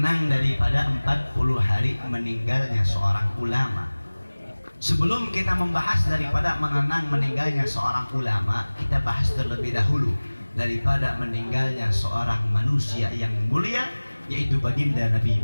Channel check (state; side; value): inverted; both; correlation -1.00